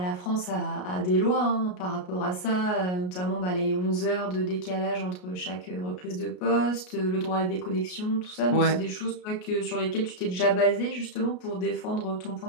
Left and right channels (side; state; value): right; late; 33 ms